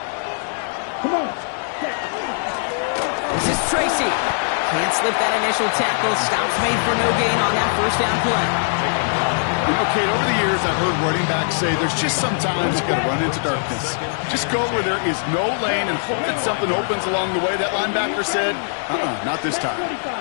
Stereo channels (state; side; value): silent; right; 64 dB below the other